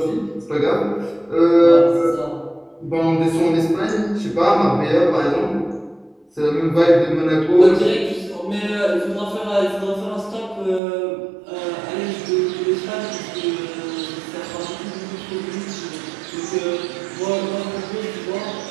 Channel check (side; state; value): left; drops out; at 10.8 s